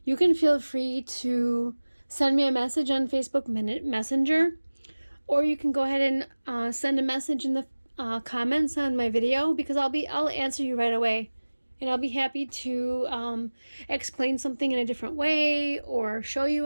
you can feel free to send me a message on Facebook Messenger, or you can go ahead and send a message in the comments on my video, because I'll answer you right away. And I'll be happy to explain something in a different way, or show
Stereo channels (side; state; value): both; inverted; correlation -1.00